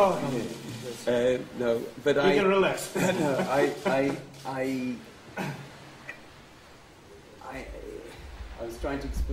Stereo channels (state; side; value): identical; both; correlation 1.00